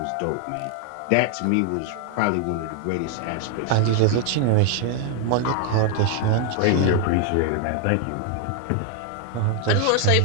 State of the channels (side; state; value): both; different; correlation 0.00